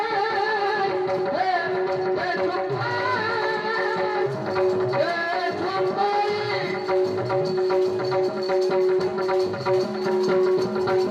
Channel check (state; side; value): identical; both; correlation 1.00